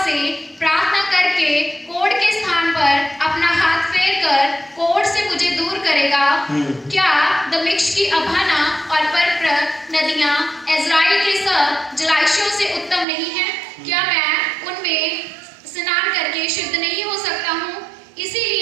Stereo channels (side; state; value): left; drops out; at 13.1 s